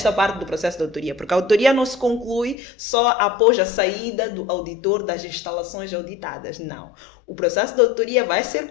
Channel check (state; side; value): drops out; right; at 2.6 s